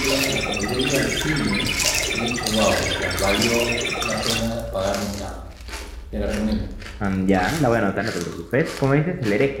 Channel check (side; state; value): both; identical; correlation 1.00